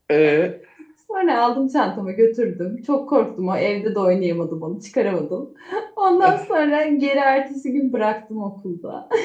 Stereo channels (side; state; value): both; identical; correlation 1.00